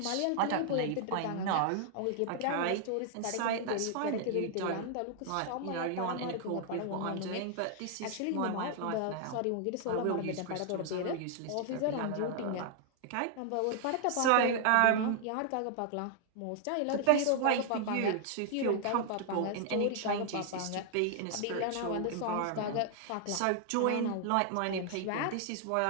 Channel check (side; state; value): both; different; correlation 0.00